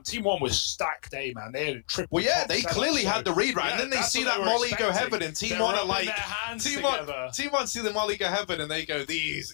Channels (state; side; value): silent; right; 59 dB below the other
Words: Team 1 was stacked A, man. They had a triple. Well, yeah, top they setup, clearly so, had the read right, yeah, and then they that's see what that were Molly go expecting. heaven, and Team They're 1 are rubbing like, their hands Team together. 1 see the Molly go heaven, and they go,